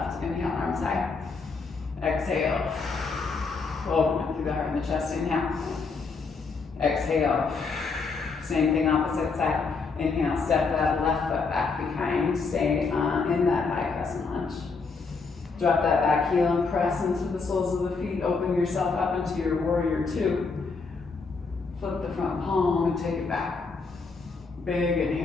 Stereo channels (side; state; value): right; quieter; 4.5 dB